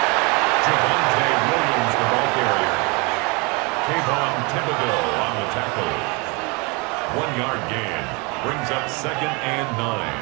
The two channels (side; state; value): left; quieter; 29.0 dB